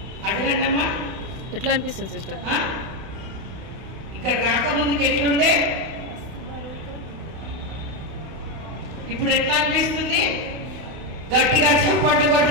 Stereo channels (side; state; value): left; late; 32 ms